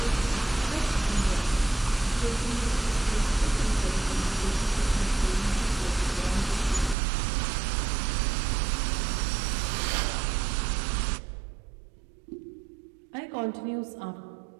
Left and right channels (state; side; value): drops out; left; at 7.0 s